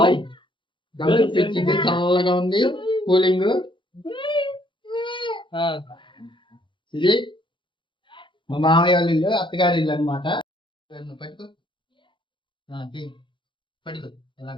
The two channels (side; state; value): right; late; 0.24 ms